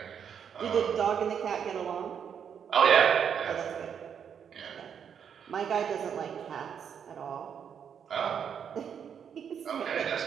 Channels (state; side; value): quieter; left; 7.8 dB